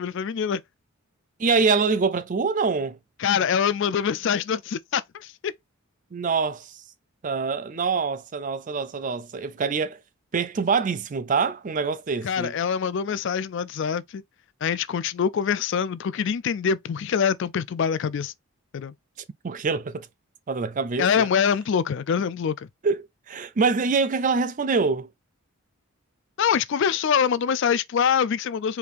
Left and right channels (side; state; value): both; normal; correlation -0.07